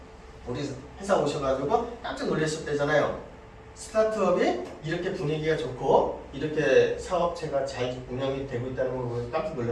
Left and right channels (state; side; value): identical; both; correlation 1.00